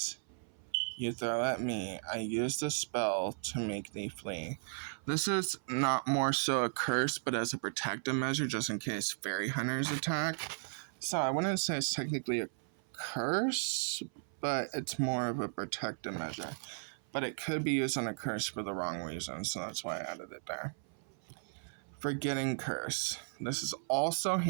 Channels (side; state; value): left; silent; 54 dB below the other